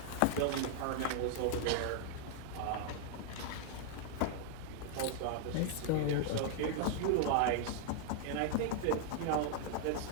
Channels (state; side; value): different; both; correlation 0.00